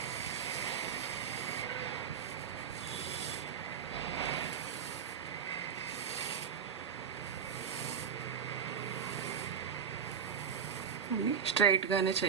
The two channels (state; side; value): quieter; left; 7.2 dB